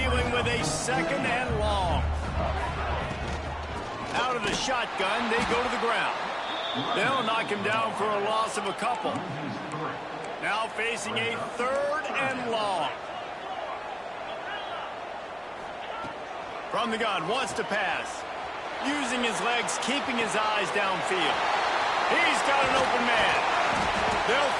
with a 2nd and long. Out of the shotgun, they go to the ground. They'll knock him down for a loss of a couple. Now facing a 3rd and long. From the gun, wants to pass. Using his legs, keeping his eyes downfield. He's got an open man. They'll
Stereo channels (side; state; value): both; identical; correlation 1.00